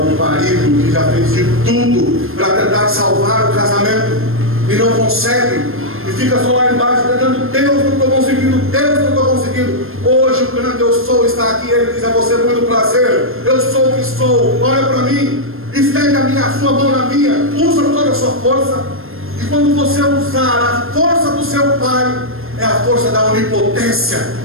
marido que já fez de tudo para tentar salvar o casamento e não consegue? E fica só lá embaixo tentando: Deus, não estou conseguindo, Deus, não estou conseguindo. Hoje o grande eu sou está aqui. Ele diz a você: muito prazer, eu sou o que sou, olha para mim, estende a sua mão na minha, usa toda a sua força. E quando você usar a força do seu pai, é a força da onipotência,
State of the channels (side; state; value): left; late; 0.60 ms